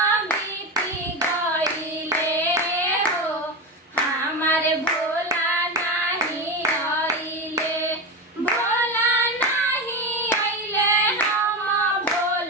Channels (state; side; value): normal; both; correlation 0.18